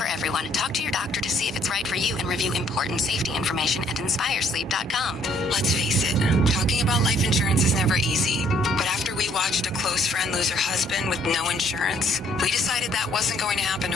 everyone. Talk to your doctor to see if it's right for you and review important safety information at InspireSleep.com. Let's face it, talking about life insurance is never easy. But after we watched a close friend lose her husband with no insurance, we decided that wasn't going to happen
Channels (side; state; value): both; normal; correlation 0.65